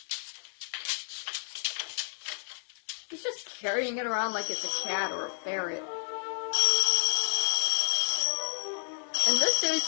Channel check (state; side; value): silent; right; digital silence